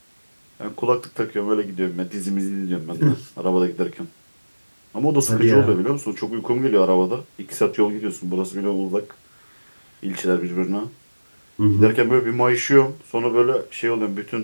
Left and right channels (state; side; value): inverted; both; correlation -1.00